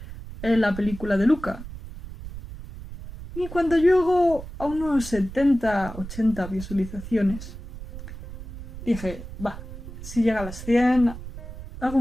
la película de Luca. Y cuando llego a unos 70-80 visualizaciones, dije, si llega a las 100, hago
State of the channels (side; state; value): right; noise; rumble, 12 dB below the sound